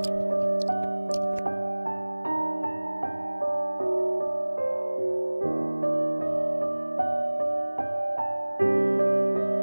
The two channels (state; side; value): inverted; both; correlation -1.00